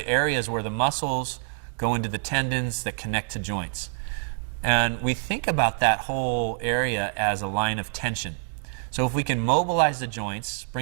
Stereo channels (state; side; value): silent; left; digital silence